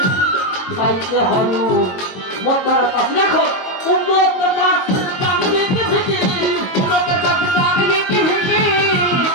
খাইতে হয় মোটের কাছে। দেখো উন্নত নাচের দাম দিতে ভিকি, উন্নত নাচের দাম দিতে ভিকি,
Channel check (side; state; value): right; late; 22 ms